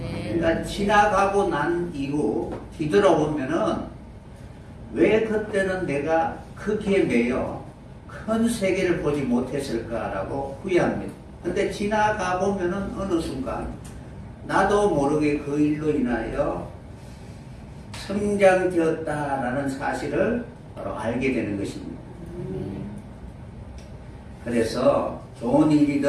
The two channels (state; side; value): identical; both; correlation 1.00